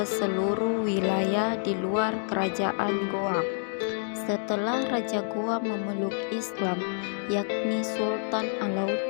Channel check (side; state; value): right; silent; digital silence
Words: seluruh wilayah di luar Kerajaan Goa. Setelah Raja Goa memeluk Islam, yakni Sultan